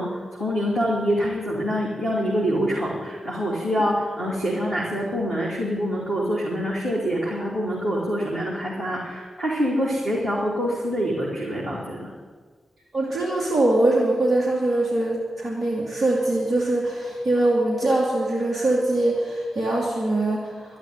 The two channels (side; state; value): both; normal; correlation 0.87